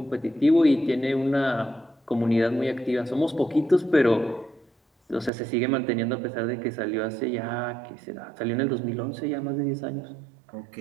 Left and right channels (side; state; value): left; drops out; at 5.3 s